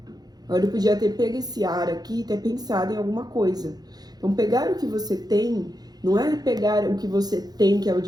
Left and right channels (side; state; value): left; late; 0.19 ms